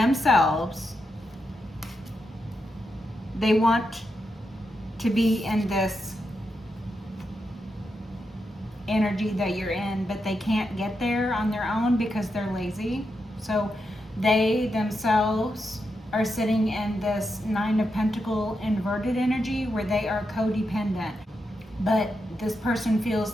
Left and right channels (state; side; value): normal; both; correlation 0.85